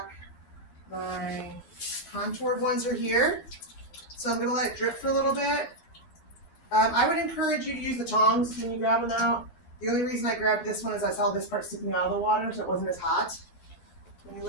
My contoured ones are here. So I'm gonna let it drip for a little bit. I would encourage you to use the tongs when you grab them out. The only reason I grabbed this one is I saw this part sticking out of the water, so it wasn't as hot. When you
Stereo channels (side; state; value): right; late; 12 ms